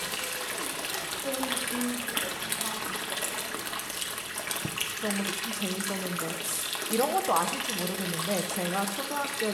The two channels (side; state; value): both; identical; correlation 1.00